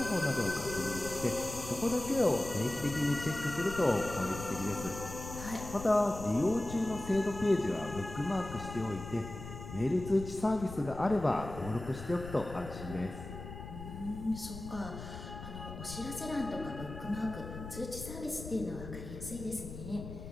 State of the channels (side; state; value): left; noise; rumble, 10 dB below the sound